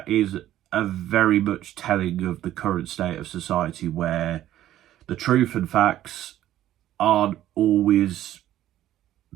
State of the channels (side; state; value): left; quieter; 13.0 dB